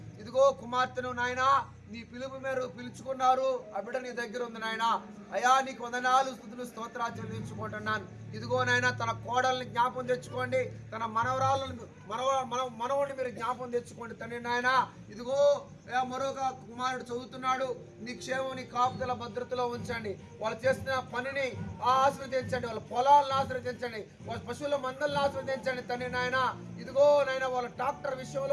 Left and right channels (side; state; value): both; identical; correlation 1.00